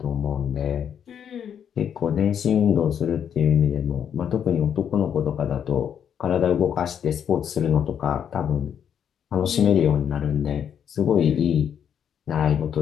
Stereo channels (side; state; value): right; quieter; 8.5 dB